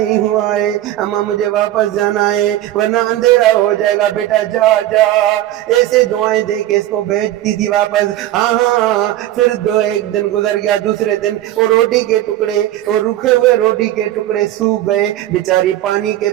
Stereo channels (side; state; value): left; quieter; 13.9 dB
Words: ہوا ہے، اماں مجھے واپس جانا ہے ورنہ اندھیرا ہو جائے گا، بیٹا جا جا۔ ایسے دعائیں دے کے اس کو بھیجتی تھی واپس۔ پھر ایک دن گزر گیا، دوسرے دن وہ روٹی کے ٹکڑے، وہ رکھے ہوئے روٹی کے ٹکڑے سوکھ گئے، بیچاری پانی کے